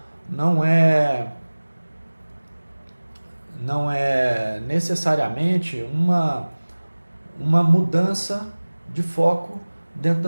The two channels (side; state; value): both; inverted; correlation -1.00